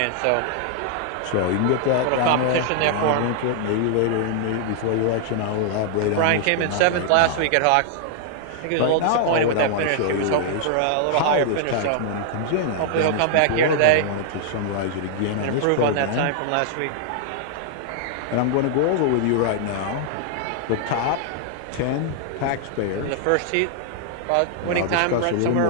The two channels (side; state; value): both; different; correlation -0.01